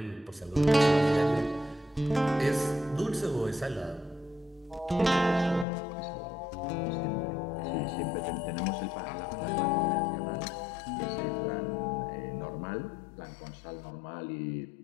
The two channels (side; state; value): right; drops out; at 5.7 s